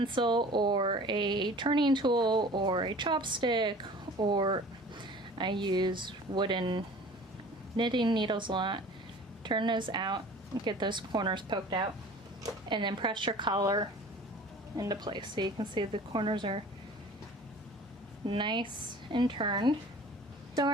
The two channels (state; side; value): normal; both; correlation 0.44